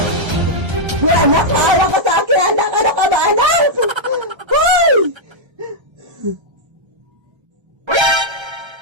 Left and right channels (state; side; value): late; left; 1.3 ms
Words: Anak, maawa ka sa akin, anak! Ano ka ba, anak? Hoy!